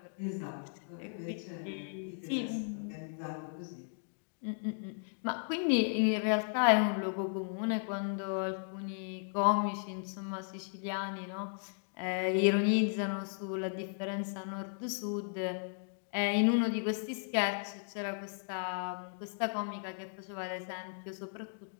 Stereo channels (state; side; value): silent; right; digital silence